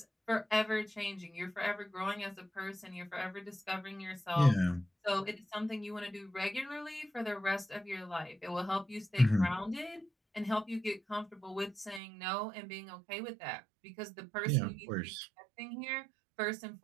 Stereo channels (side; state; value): left; drops out; at 12.0 s